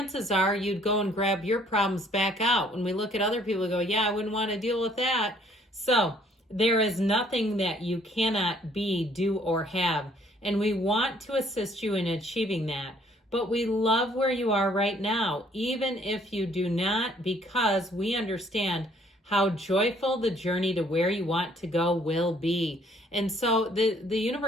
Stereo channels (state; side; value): normal; both; correlation 0.61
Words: are you'd go and grab your problems back out. When we look at other people, we go, yeah, I wouldn't want to deal with that. So there is nothing that you cannot be, do, or have, and we want to assist you in achieving that. But we love where you are right now, even if you do not, because we understand how joyful the journey to where you want to go will be. And so the